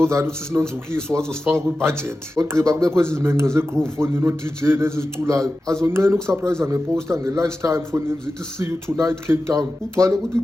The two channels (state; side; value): normal; both; correlation 0.94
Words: that uthi sinonzukiso wazosifaka kwibudget. Ogqiba kubekho ezi zimenqe zegroove fonini o-DJ neziziculayo. Azonqena ukusurprise ngeposter nge-lunch time fonini zithi see you tonight Cape Town. Ugcwale ukuthi